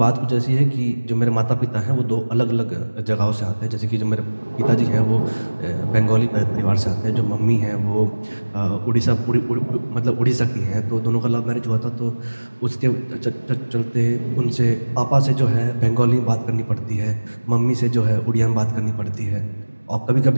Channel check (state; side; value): inverted; both; correlation -1.00